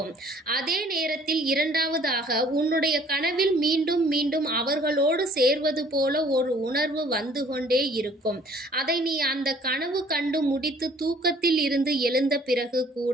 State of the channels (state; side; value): normal; both; correlation 0.56